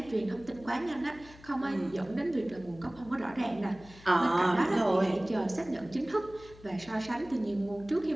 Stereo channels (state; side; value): noise; left; hum, 21 dB below the sound